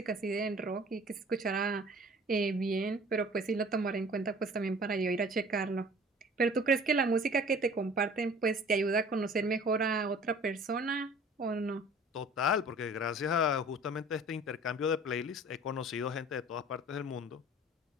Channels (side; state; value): both; normal; correlation 0.47